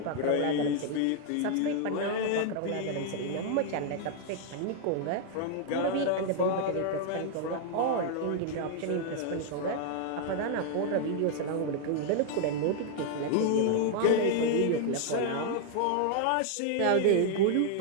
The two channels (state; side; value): different; both; correlation 0.00